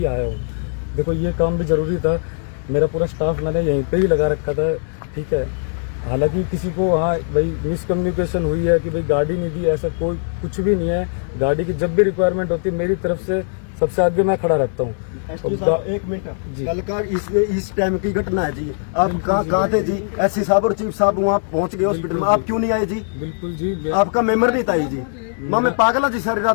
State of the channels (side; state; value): right; silent; digital silence